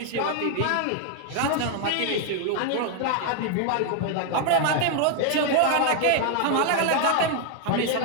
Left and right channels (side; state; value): both; different; correlation 0.00